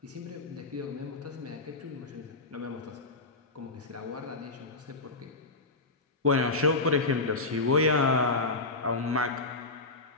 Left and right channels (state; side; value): quieter; right; 3.3 dB